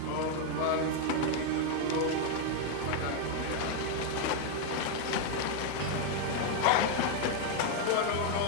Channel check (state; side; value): different; both; correlation 0.00